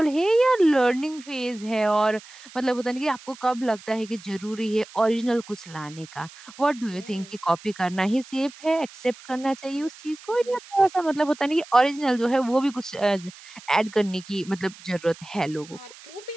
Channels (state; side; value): noise; right; hiss, 20 dB below the sound